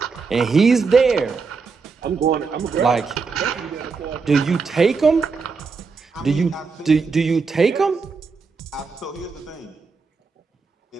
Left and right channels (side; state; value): left; quieter; 4.8 dB